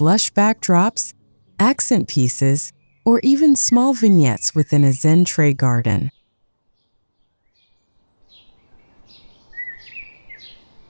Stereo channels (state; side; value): inverted; both; correlation -1.00